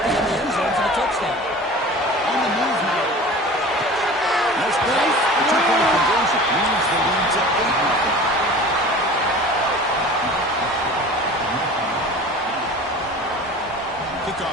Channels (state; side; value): normal; both; correlation 0.40